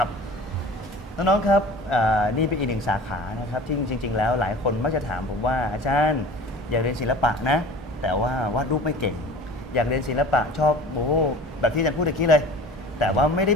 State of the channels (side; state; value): both; normal; correlation 0.41